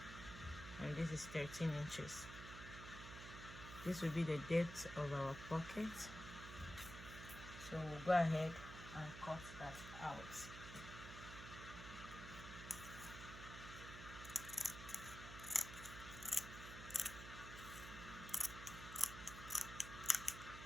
and this is 13 inches. This will be the depth of our pocket, so we'll go ahead and cut that out.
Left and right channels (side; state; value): right; noise; hum, 10 dB below the sound